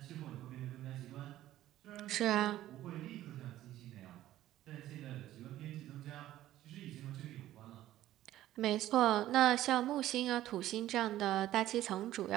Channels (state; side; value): quieter; left; 13.9 dB